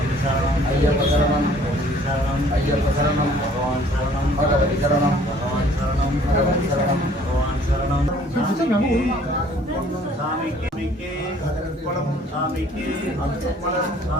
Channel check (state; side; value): normal; both; correlation 0.56